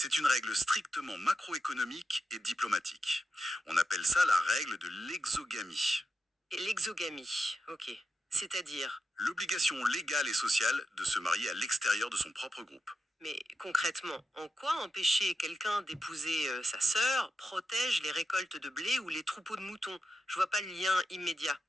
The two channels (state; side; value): normal; both; correlation 0.88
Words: une règle strictement macroéconomique et diplomatique. On appelle ça la règle de l'exogamie. Et l'exogamie, ok. C'est-à-dire, L'obligation légale et sociale de se marier à l'extérieur de son propre groupe. mais concrètement, en quoi empêcher quelqu'un d'épouser sa sœur protège les récoltes de blé ou les troupeaux de moutons? Je vois pas le lien immédiat.